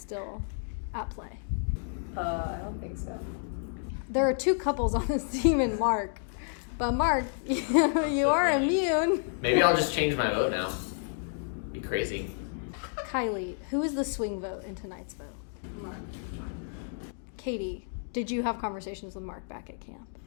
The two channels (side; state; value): right; silent; digital silence